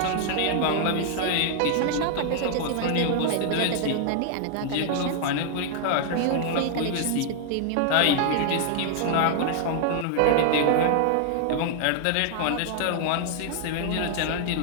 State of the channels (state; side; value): different; both; correlation 0.00